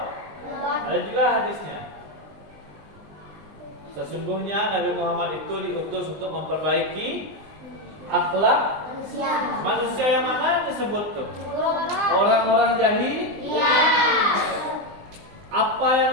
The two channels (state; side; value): late; left; 20 ms